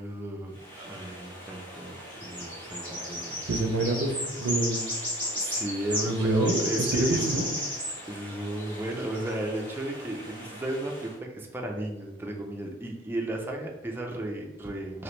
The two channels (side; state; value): both; normal; correlation 0.50